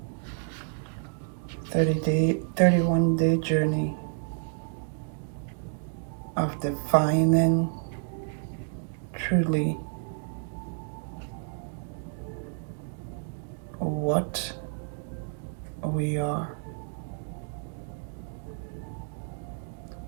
31-day journey of defining truly what we are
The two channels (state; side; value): silent; left; 58 dB below the other